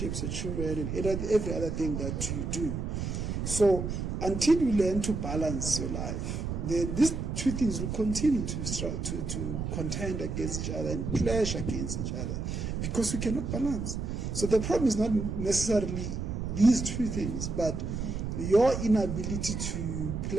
your children, and every other thing that you do. So until you learn to balance your life, then these two things will continue to contend against each other and clash against each other because we cannot balance. So the problem is not necessarily these two things, but your inability to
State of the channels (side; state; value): right; noise; rumble, 3 dB below the sound